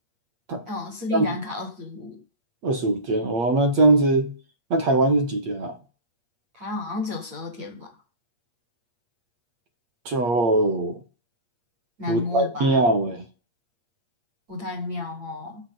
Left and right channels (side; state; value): left; late; 8.5 ms